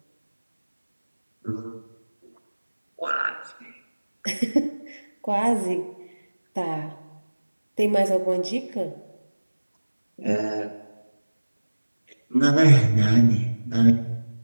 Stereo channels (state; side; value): inverted; both; correlation -1.00